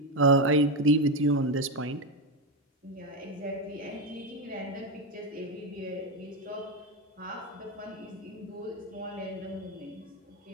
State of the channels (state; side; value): normal; both; correlation 0.11